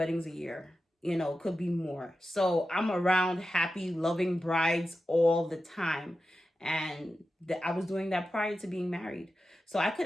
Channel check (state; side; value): normal; both; correlation 0.92